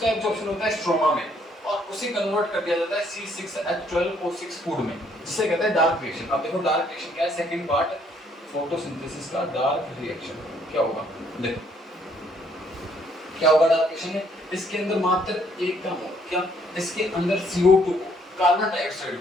एब्जॉर्प्शन होता है स्ट्रोमा में और उसे कन्वर्ट कर दिया जाता है C6H12O6 फूड में, जिसे कहते हैं डार्क रिएक्शन। अब देखो डार्क रिएक्शन क्या है, सेकंड पार्ट फोटोसिंथेसिस का डार्क रिएक्शन क्या होगा, देखो क्या होगा डार्क रिएक्शन में, इसके अंदर मात्र एक काम होगा, क्या, इसके अंदर CO2 को, कार्बन डाइऑक्साइड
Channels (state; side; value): normal; both; correlation 0.67